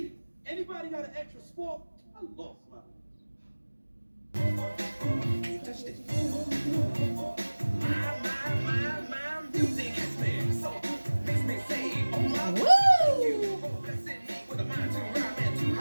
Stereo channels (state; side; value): inverted; both; correlation -1.00